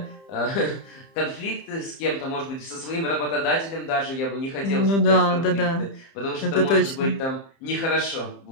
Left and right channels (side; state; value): right; late; 30 ms